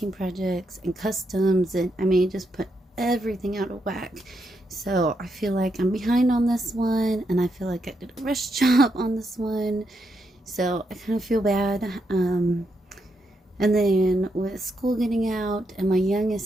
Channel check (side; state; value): both; normal; correlation 0.81